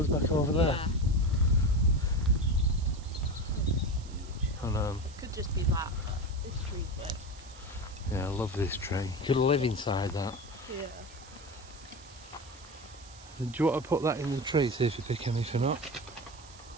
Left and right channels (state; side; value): noise; right; hiss, 20 dB below the sound